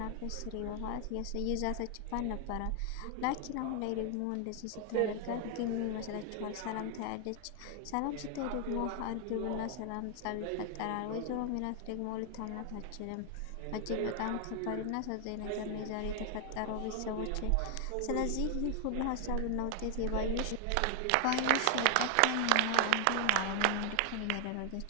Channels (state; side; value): different; both; correlation 0.00